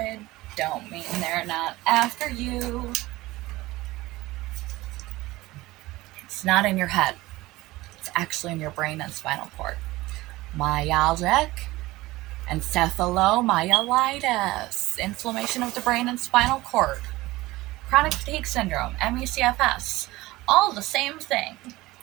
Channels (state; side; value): quieter; left; 19.1 dB